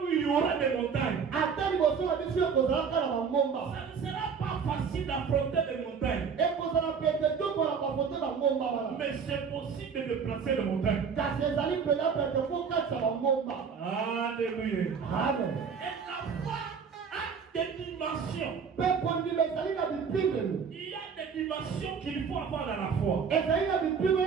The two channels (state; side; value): quieter; left; 6.3 dB